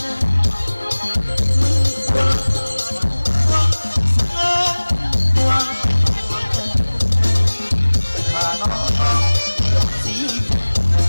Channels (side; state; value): both; inverted; correlation -1.00